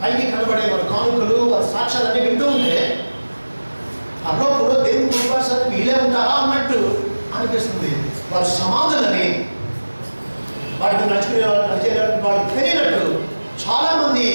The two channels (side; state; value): both; inverted; correlation -1.00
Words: కనబడే వారి కానుకలు, వారి సాక్ష్యాలన్నీ వింటూ ఉంటే పరలోకంలో దేవుని కుటుంబానికి వీలే ఉంటారా అన్నట్టు అనిపిస్తుంది. వారి సమాధులని వాటికి నడుచుకునే వాళ్ళకి తెలియనట్టు చాలామంది